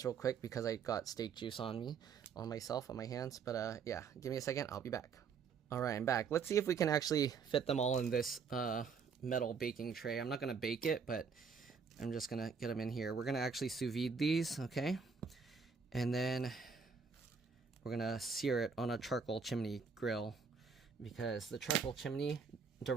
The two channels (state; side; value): quieter; left; 5.7 dB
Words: real quick because I got steak juice on myself, on my hands. But yeah, give me a second. I'll be back. All right, I'm back. Let's see if we can actually fit them all in this metal baking tray. I'm not gonna bake it, but I'm just gonna get them in here. We're gonna actually sous vide these, okay? And then we're gonna sear it on a charcoal chimney grill because the charcoal chimney